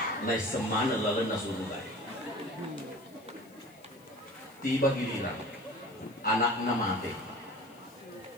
nai semana lalena surugai. Tiba giliran anaknya mati.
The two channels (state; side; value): noise; left; hiss, 28 dB below the sound